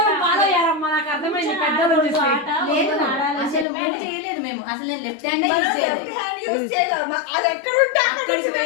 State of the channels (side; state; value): right; drops out; at 3.7 s